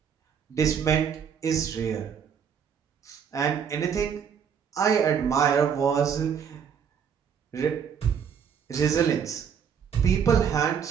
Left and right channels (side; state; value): left; quieter; 7.5 dB